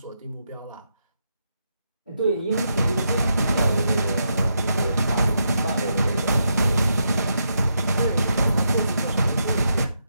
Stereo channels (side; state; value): both; inverted; correlation -0.82